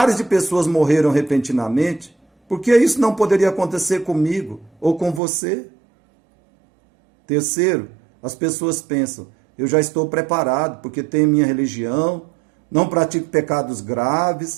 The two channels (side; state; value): left; drops out; at 5.2 s